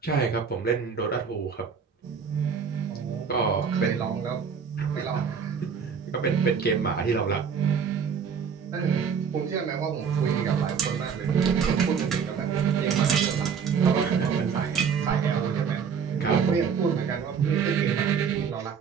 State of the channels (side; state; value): left; quieter; 6.6 dB